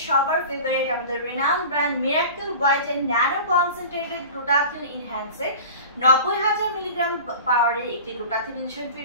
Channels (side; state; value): both; inverted; correlation -0.37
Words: সবার ফেভারিট আমাদের renowned brand Miracle White and nano concentrated glutathione enhancer 90,000 milligram পাওয়ারের একটি গ্লুটাথিয়ন